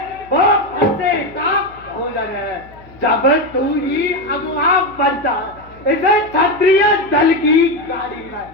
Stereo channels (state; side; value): noise; left; hum, 24 dB below the sound